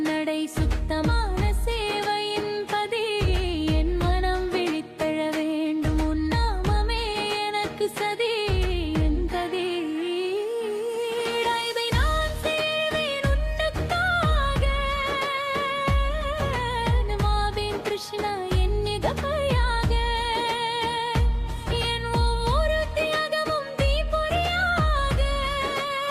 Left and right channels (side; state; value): both; identical; correlation 1.00